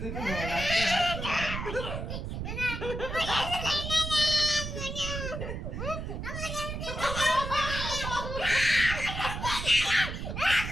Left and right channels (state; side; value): noise; right; rumble, 5 dB below the sound